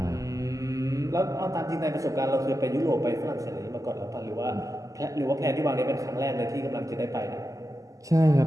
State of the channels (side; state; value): left; late; 0.16 ms